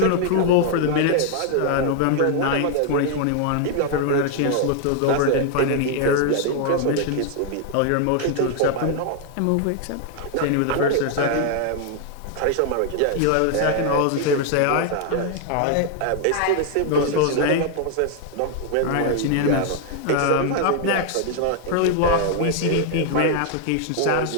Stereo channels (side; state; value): both; different; correlation 0.00